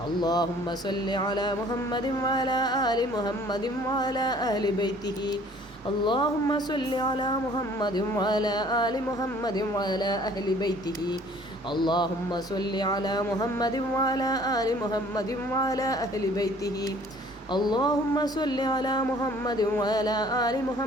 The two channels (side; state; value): both; normal; correlation 0.54